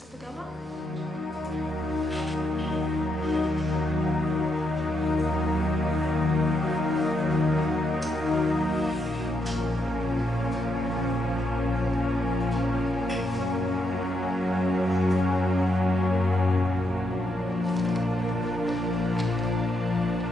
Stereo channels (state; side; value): normal; both; correlation 0.80